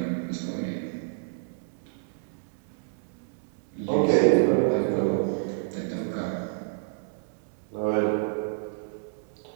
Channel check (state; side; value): silent; left; digital silence